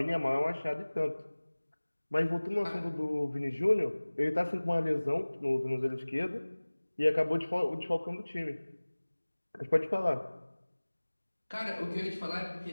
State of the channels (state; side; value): inverted; both; correlation -1.00